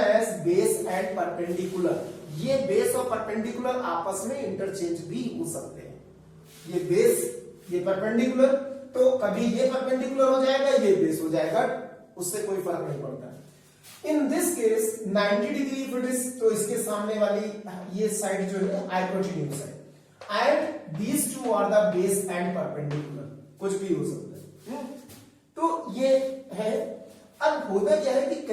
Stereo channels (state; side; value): identical; both; correlation 1.00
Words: base and perpendicular. ये base और परपेंडिकुलर आपस में इंटरचेंज भी हो सकते हैं. ये बेस, ये परपेंडिकुलर, तो कभी ये परपेंडिकुलर हो जाएगा, ये बेस हो जाएगा, उससे कोई फर्क नहीं पड़ता. In this case 90 degree if it is, तो इसके सामने वाली ये साइड जो है हाइपोटेन्यूज है. And these two are the base and perpendicular. कुछ भी हो सकता है. तो ये है. अब होता क्या है कि